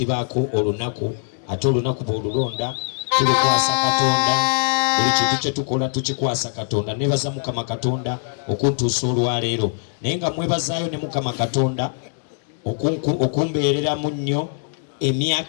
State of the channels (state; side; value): silent; right; 64 dB below the other